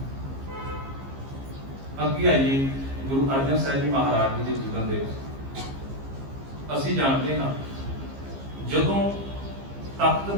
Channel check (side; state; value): left; late; 15 ms